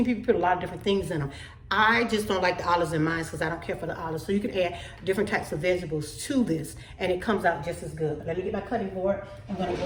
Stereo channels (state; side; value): identical; both; correlation 1.00